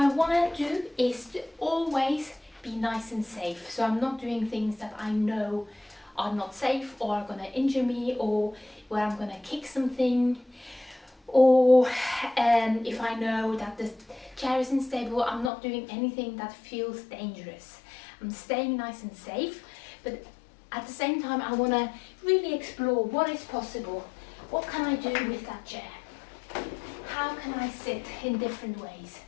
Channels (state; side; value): drops out; right; at 15.5 s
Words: want to do is to always be nice and safe. So I'm not doing things that I know are not safe or are going to injure me, or where I'm going to kick something, or if I know that the chair is unstable, I'm not doing anything that feels dangerous. I'm staying nice and safe, but at the same time I want to really explore what is possible. What can I do with that chair? How can I sit in different ways?